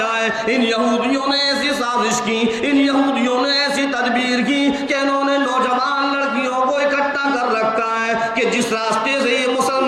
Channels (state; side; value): identical; both; correlation 1.00